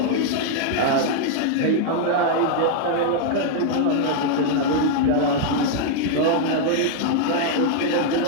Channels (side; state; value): both; different; correlation 0.00